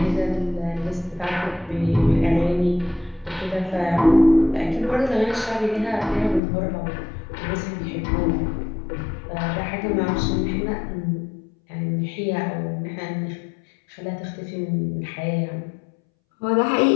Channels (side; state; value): right; drops out; at 6.4 s